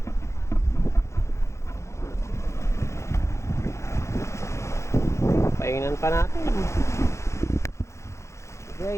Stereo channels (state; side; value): late; right; 0.14 ms